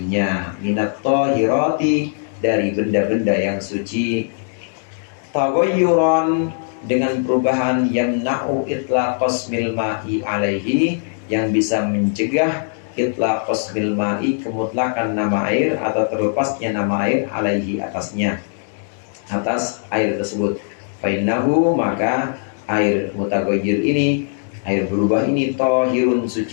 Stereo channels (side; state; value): right; silent; 66 dB below the other